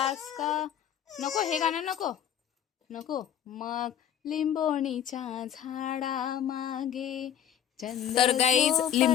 का. नको हे गाणं नको नको. मग लिंबोणीच्या झाडा मागे तर गाईज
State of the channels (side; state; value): right; quieter; 9.8 dB